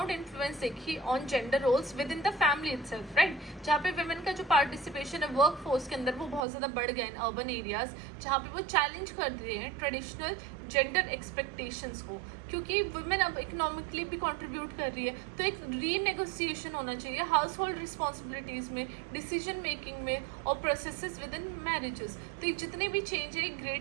इन्फ्लुएंस देखी on gender roles within the family itself, right, जहाँ पे वुमेन का जो पार्टिसिपेशन है वर्क फोर्स के अंदर वो बहुत ज़्यादा बढ़ गया इन अर्बन एरियाज, जहाँ पे वो चैलेंज कर रहे हैं ट्रेडिशनल जेंडर एक्सपेक्टेशंस को, क्योंकि वुमेन अब इकोनॉमिकली भी कंट्रीब्यूट कर रही है, तो एक रीनेगोशिएशन होना चाहिए हाउस होल्ड रिस्पॉन्सिबिलिटीज़ में, डिसीजन मेकिंग में और प्रोसेसेस विद इन मैरिजेस। तो ये जितने भी चेंज है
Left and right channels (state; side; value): drops out; left; at 6.4 s